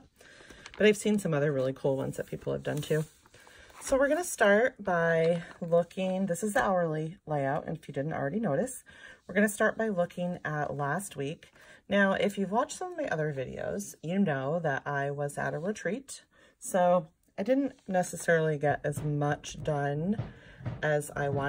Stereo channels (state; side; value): identical; both; correlation 1.00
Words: But I've seen some other really cool ones that people have done too. So we're going to start by looking, this is the hourly layout, and if you didn't already notice, we're going to start by looking at last week. Now, if you've watched some of my other videos, you know that I was at a retreat. So I didn't necessarily get as much done as I